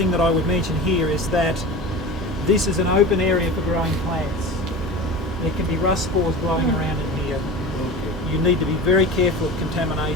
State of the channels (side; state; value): both; normal; correlation 0.32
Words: that I would mention here is that this is an open area for growing plants. There can be rust spores blowing around in here. You need to be very careful of